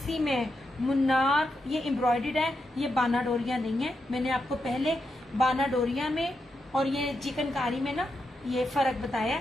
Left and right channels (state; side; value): normal; both; correlation 0.85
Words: में मुन्नार ये एम्ब्रॉयडर्ड है, ये बाना डोरिया नहीं है। मैंने आपको पहले बाना डोरिया में और ये चिकनकारी में ना ये फर्क बताया।